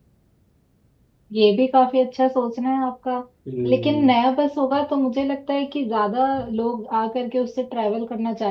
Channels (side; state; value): both; identical; correlation 1.00